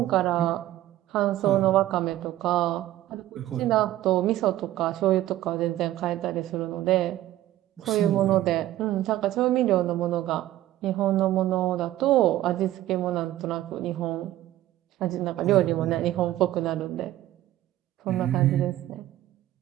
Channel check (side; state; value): left; quieter; 14.3 dB